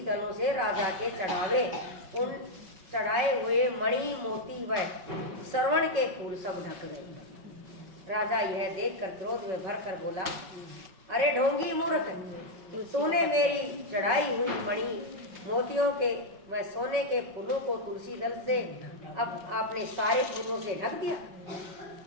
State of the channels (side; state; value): left; late; 5.4 ms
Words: दलों से राजा के चढ़ावे उन चढ़ाए हुए मणि मोती व श्रवण के फूल सब ढक गए। राजा यह देखकर क्रोध में भर कर बोला, अरे ढोंगी मूर्ख, तूने मेरी चढ़ाई हुई मणि मोतियों के व सोने के फूलों को तुलसी दल से अब आपने सारे फूलों से ढक दिया।